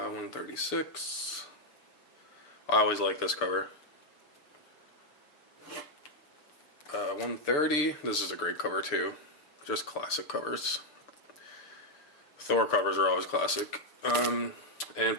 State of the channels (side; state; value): right; late; 6.7 ms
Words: I always like this cover. 130. This is a great cover too. Just classic covers. Thor covers are always classic. And